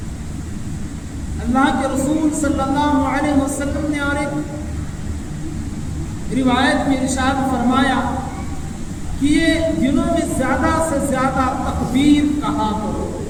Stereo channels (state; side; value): identical; both; correlation 1.00